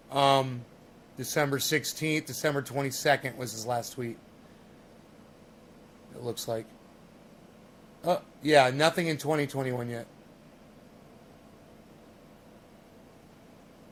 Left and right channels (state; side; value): identical; both; correlation 1.00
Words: December 16th, December 22nd was his last tweet. It looks like. Oh, yeah, nothing in 2021 yet.